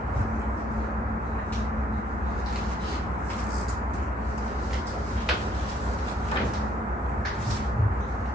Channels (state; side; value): normal; both; correlation 0.67